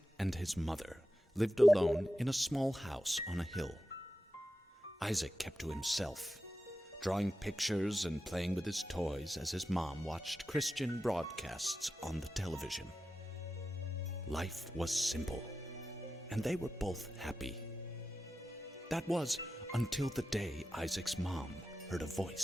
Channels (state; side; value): normal; both; correlation 0.91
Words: and his mother lived alone in a small house on a hill. Isaac kept to himself, drawing pictures and playing with his toys as his mom watched Christian broadcasts on the television. Life was simple, and they were both happy. That was until the day Isaac's mom heard a